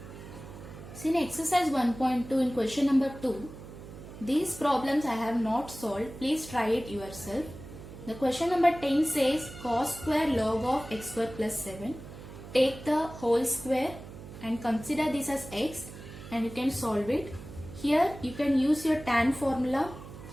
See, in exercise 1.2 in question number 2, these problems I have not solved. Please try it yourself. The question number 10 says cos square log of x square plus 7. Take the whole square and consider this as x, and you can solve it. Here you can use your tan formula,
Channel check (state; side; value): noise; right; hum, 14 dB below the sound